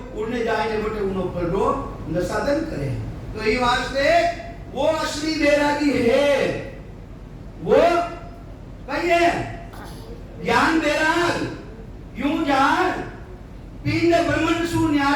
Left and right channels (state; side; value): identical; both; correlation 1.00